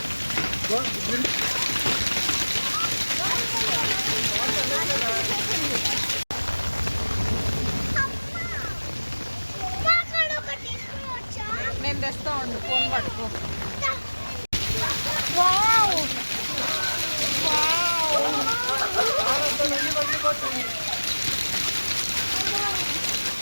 నేను తెస్తా ఉండు, ఫోన్ పట్టుకో.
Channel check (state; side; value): inverted; both; correlation -1.00